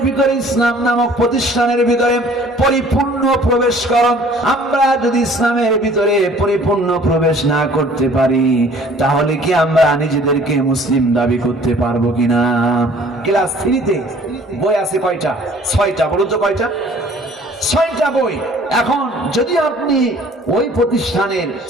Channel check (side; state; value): both; normal; correlation 0.53